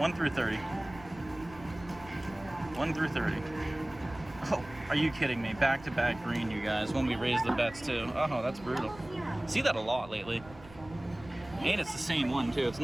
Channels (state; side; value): noise; right; rumble, 19 dB below the sound